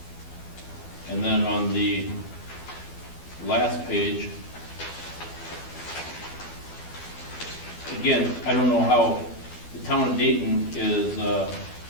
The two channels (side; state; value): right; late; 12 ms